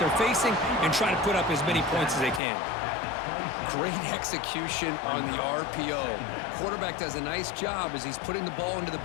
they're facing, and try to put up as many points as they can. Great execution on the RPO. Quarterback does a nice job as he's putting the ball into the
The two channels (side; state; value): right; drops out; at 2.4 s